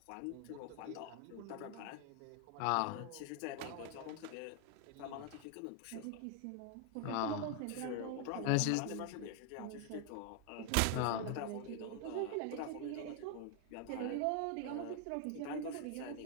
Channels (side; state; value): both; different; correlation 0.00